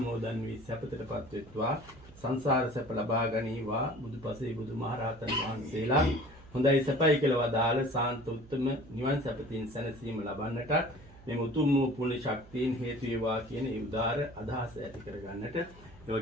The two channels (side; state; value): right; noise; hum, 21 dB below the sound